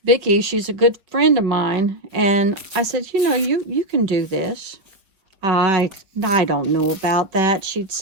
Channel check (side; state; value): left; late; 5.1 ms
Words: Vicky, she's a good friend of mine, and I said, you know, you can do this. I don't know about that, she'd